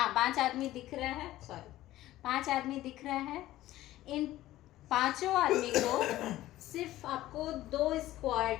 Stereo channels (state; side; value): quieter; right; 15.2 dB